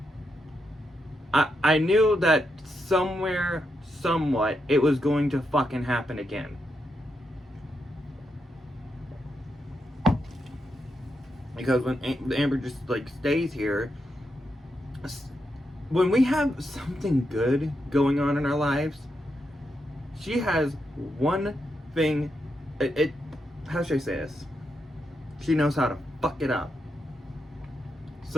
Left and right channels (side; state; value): both; normal; correlation 0.83